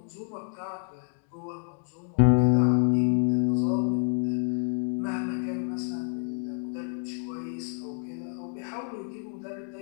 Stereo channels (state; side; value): silent; right; 55 dB below the other